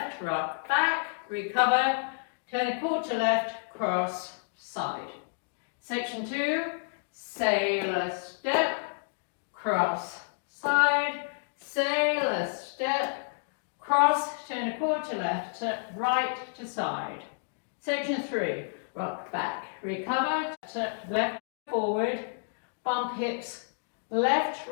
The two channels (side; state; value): right; silent; digital silence